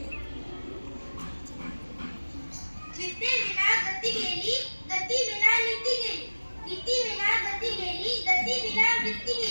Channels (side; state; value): both; inverted; correlation -1.00